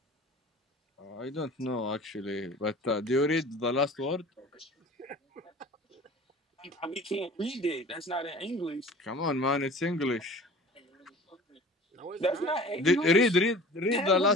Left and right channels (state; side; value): normal; both; correlation 0.42